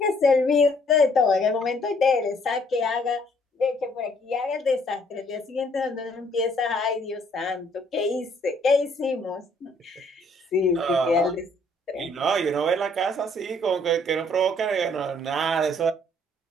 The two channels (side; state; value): both; normal; correlation 0.64